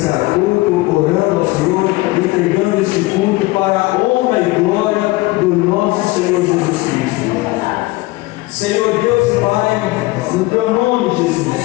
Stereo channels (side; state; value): right; quieter; 20.8 dB